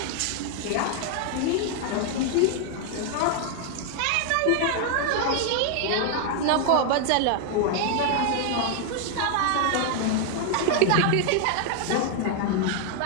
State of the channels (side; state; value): both; different; correlation 0.00